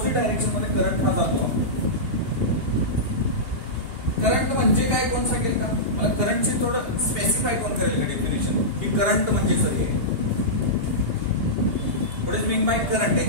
डायरेक्शन मध्ये करंट हा जातो. करंट म्हणजे काय कोण सांगेल का मला, करंटची थोडं स्पेसिफाय कोण करेल का डेफिनेशन, की करंट म्हणजे सर हे what is mean by current,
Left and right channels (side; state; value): left; late; 2.8 ms